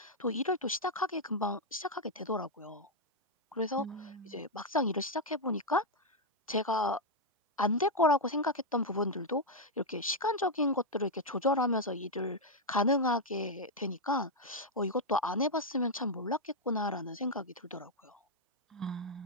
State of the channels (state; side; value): normal; both; correlation -0.01